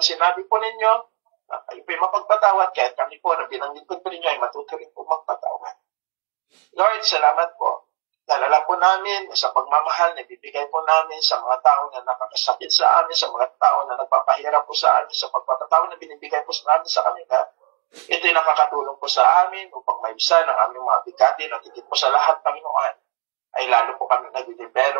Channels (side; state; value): left; quieter; 35.9 dB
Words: po ninyo, na kayo po'y mapagpatawad, kahit kami po na bilang lingkod po ninyo ay matuto rin po magpatawad. Lord, salamat po. Nalala po namin sa pagmamahal na bibigay po namin sa mga tao na nakakasakit sa amin, sa mga tao na nagpapahirap po sa amin, sa pagpapatawad na binibigay po sa amin sa kanila. Ito'y nakakatulong po sa amin upang maibsan ang aming mga bigatin at higit po sa lahat, Panginoon, ay lalo po kami